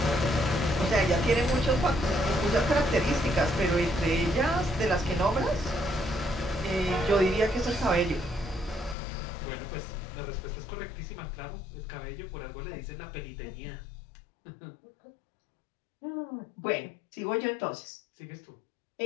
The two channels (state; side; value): drops out; right; at 9.0 s